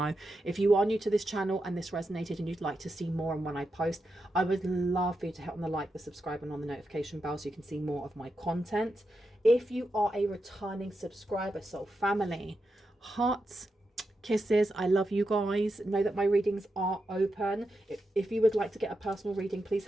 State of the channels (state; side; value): normal; both; correlation 0.87